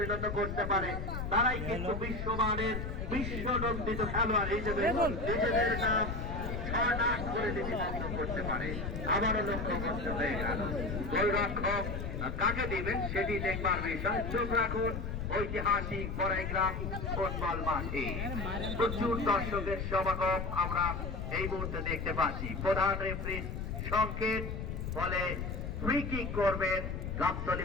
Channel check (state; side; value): noise; left; rumble, 4 dB below the sound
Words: করতে পারে তারাই কিন্তু বিশ্বমানের বিশ্বনন্দিত খেলোয়াড় হিসেবে নিজেদের নাম ছড়াক করে লিপিবদ্ধ করতে পারে। আবারও লক্ষ্য করতে হয়ে গেল গোলরক্ষক কাকে দিবেন সেটি দেখবার বিষয়। চোখ রাখুন ঐতিহাসিক বড়াইগ্রাম ফুটবল মাঠে প্রচুর দর্শকের সমাগম আমরা এই মুহূর্তে দেখতে পাচ্ছি। প্রধান রেফারির সংকেত বলে ফ্রি কিক করবেন গাবতলী